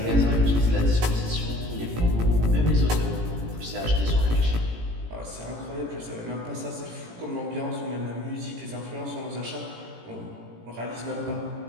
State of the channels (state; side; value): late; left; 18 ms